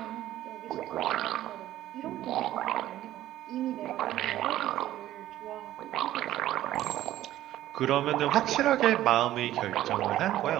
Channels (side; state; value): left; quieter; 13.8 dB